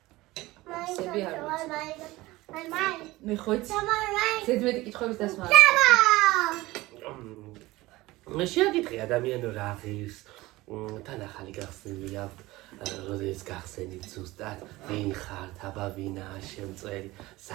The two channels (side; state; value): left; quieter; 19.3 dB